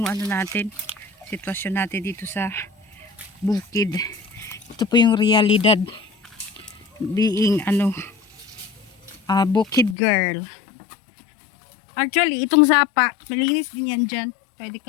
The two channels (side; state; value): right; drops out; at 10.0 s